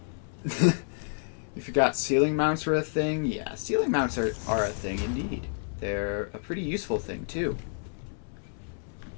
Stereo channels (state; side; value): silent; right; 58 dB below the other